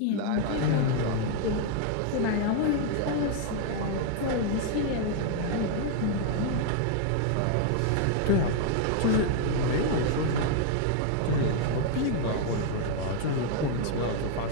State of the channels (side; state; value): both; different; correlation 0.00